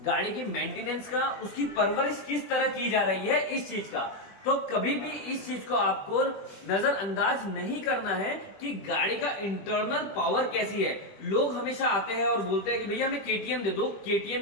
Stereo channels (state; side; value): late; right; 20 ms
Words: गाड़ी की मेंटेनेंस का, उसकी परवरिश किस तरह की जा रही है, इस चीज का। तो कभी भी इस चीज को आपको नजरअंदाज नहीं करना है कि गाड़ी का इंटरनल पावर कैसी है। लोग हमेशा आते हैं और बोलते हैं कि भैया हमें KTM दे दो,